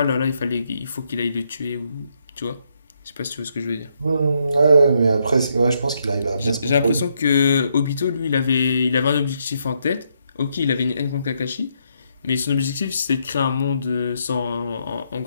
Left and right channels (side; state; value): both; inverted; correlation -0.76